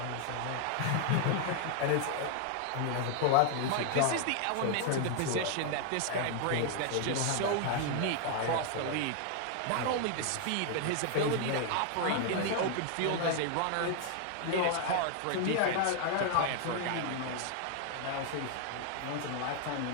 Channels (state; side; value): different; both; correlation 0.00